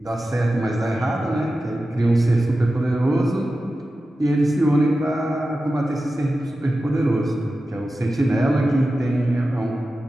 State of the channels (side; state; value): both; normal; correlation 0.93